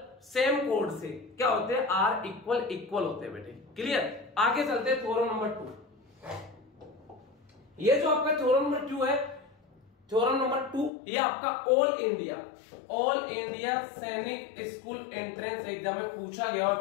सेम कोड से क्या होते हैं, आर इक्वल होते हैं बेटे, क्लियर। आगे चलते हैं थ्योरम नंबर 2। ये जो आपका थ्योरम नंबर 2 है, थ्योरम नंबर 2, ये आपका ऑल इंडिया सैनिक स्कूल एंट्रेंस एग्जाम में पूछा गया है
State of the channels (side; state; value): right; drops out; at 10.9 s